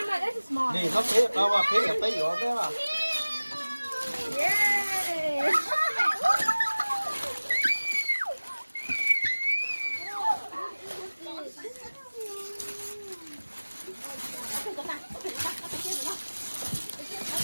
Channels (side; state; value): both; inverted; correlation -1.00